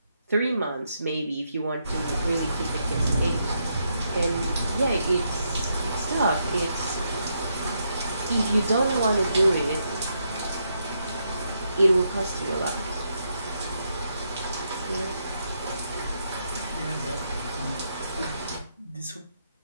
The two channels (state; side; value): inverted; both; correlation -0.79